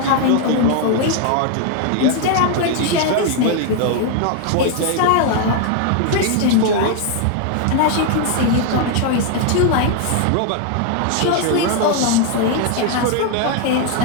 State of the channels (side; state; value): both; different; correlation 0.00